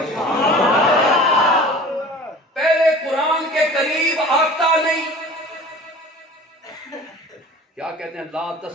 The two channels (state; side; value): normal; both; correlation 0.42